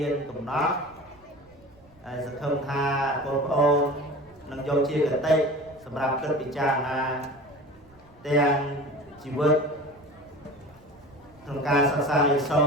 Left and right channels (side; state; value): right; noise; rumble, 28 dB below the sound